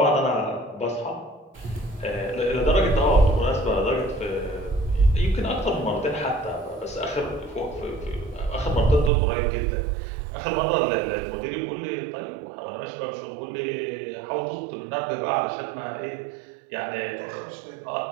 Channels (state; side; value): drops out; left; at 9.1 s